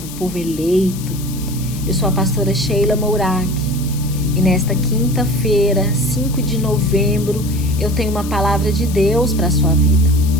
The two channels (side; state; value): left; noise; hiss, 14 dB below the sound